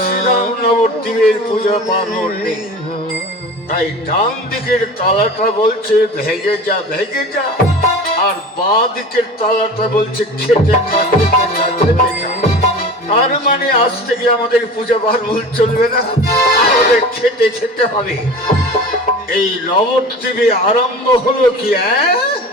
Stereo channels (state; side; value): normal; both; correlation 0.36